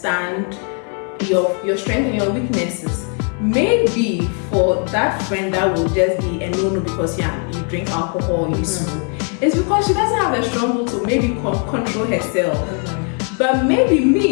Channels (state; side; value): quieter; right; 39.4 dB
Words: your strengths and your weaknesses. Maybe for that friend that will just be a no because you drink alcohol, you smoke, it's because she doesn't have the strong will to maybe control herself. But maybe